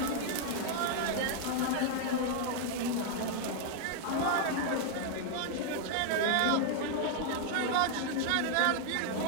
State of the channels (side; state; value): both; different; correlation 0.00